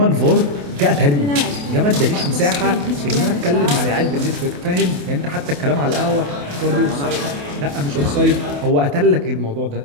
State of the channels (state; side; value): late; left; 28 ms